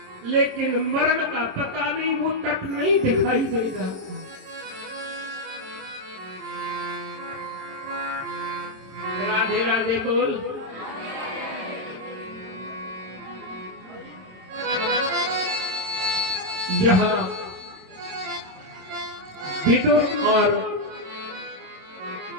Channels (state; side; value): late; left; 27 ms